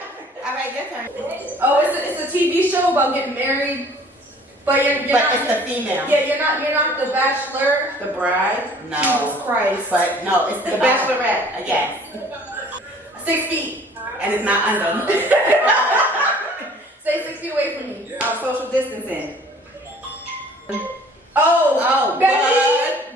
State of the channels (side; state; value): both; normal; correlation 0.52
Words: All right, your turn. Oh, it's a TV show about getting married, but you're But not, it's the female. Yeah, you're not the bachelor. The bride? No. Jesus Christ. But no, it's the bachelorette. Yes. 6 feet. And it's not under. Stay 6 feet away from me. Oh, social distancing. Oh,